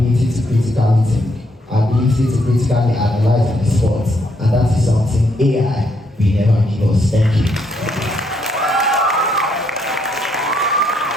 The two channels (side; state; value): both; normal; correlation 0.74